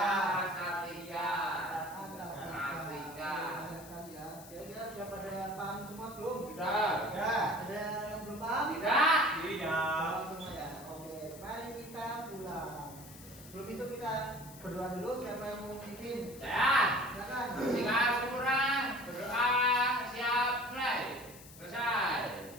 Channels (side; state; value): left; noise; hiss, 18 dB below the sound